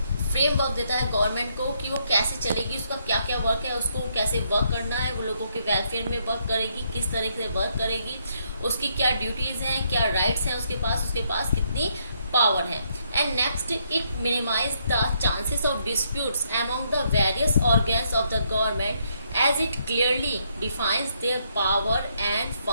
फ्रेमवर्क देता है गवर्नमेंट को कि वो कैसे चलेगी, उसका क्या क्या वर्क है, उसको कैसे वर्क करना है, वो लोगों के वेलफेयर में वर्क करेगी, किस तरह से वर्क करेगी, उसकी क्या ड्यूटीज़ हैं, क्या राइट्स हैं उसके पास कितनी पावर है. And next, it minimize the chances of disputes among the various organs of the government as it clearly defines their power and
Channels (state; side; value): inverted; both; correlation -0.74